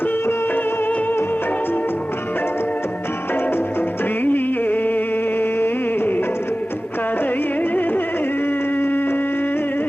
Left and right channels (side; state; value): both; normal; correlation 0.96